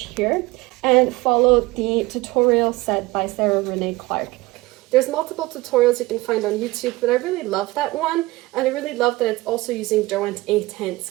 here and follow the tutorial set by Sarah Renee Clark. There's multiple tutorials you can find on YouTube, but I really love that one, and I really love that it's also using Derwent A-tints,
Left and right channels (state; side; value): quieter; left; 20.5 dB